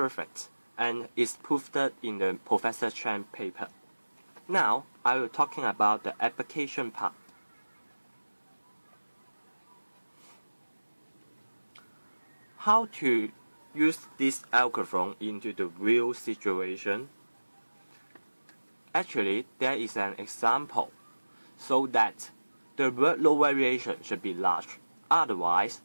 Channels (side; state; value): both; inverted; correlation -1.00